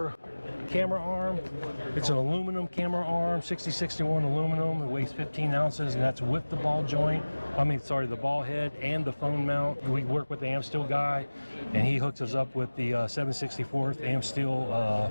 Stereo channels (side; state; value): both; inverted; correlation -1.00